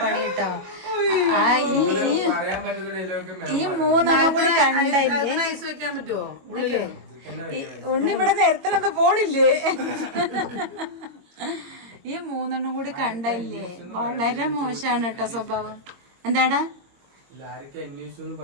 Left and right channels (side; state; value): left; late; 22 ms